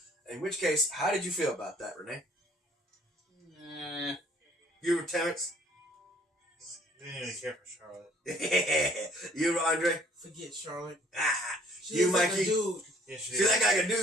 In which case, how did you feel about that, Renee? You were Terrence? Didn't even care for Charlotte. You were Andre? Forget Charlotte. She you, Mikey? Like a dude. Yeah, she did. Like a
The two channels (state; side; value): normal; both; correlation 0.58